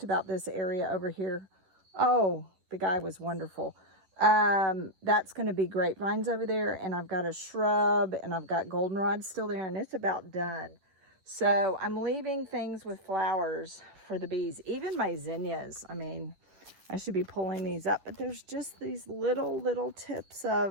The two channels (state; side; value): late; left; 11 ms